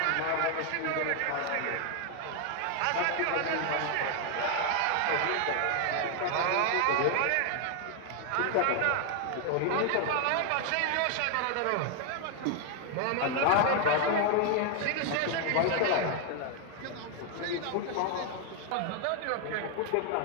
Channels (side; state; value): both; different; correlation 0.00